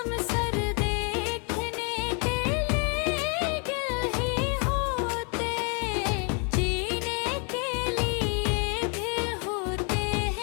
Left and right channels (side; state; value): right; quieter; 35.9 dB